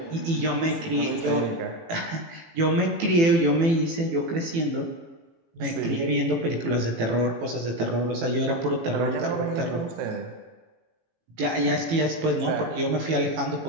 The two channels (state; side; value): late; left; 18 ms